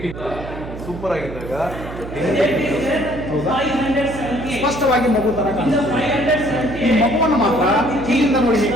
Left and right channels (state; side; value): noise; right; hum, 11 dB below the sound